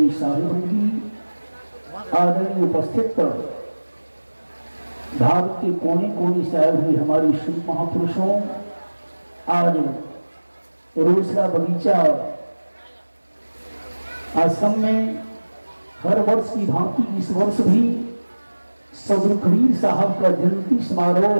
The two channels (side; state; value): both; inverted; correlation -1.00